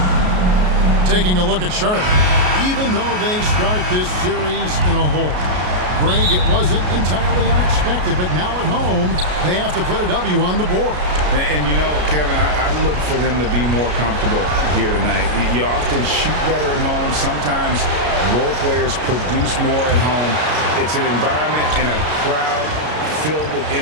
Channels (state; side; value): late; left; 33 ms